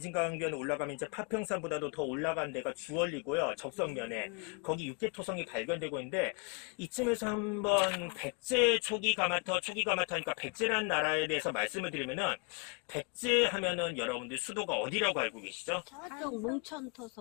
올라가면 이제 파평산보다도 더 올라간 데가 주얼리고요. 적성면에 거기 육계토성이 발견되고 있는데 이쯤에서 한번 백제 초기 가마터니까 백제란 나라에 대해서 말씀을 드리면은 백제 하면은 여러분들 수도가 어디라고 알고 계시죠? 저쪽 몽천토성.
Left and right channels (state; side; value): quieter; right; 33.1 dB